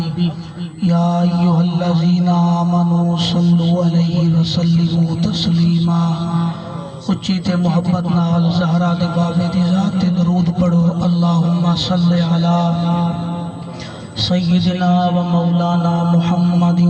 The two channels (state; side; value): identical; both; correlation 1.00